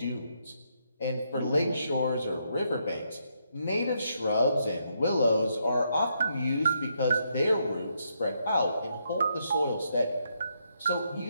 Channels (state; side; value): inverted; both; correlation -0.77